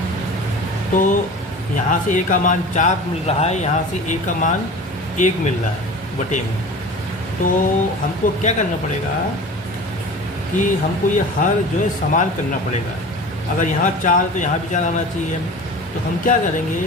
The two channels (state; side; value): normal; both; correlation 0.37